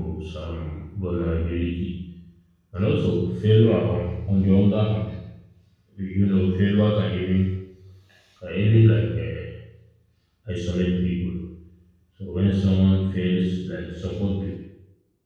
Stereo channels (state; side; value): identical; both; correlation 1.00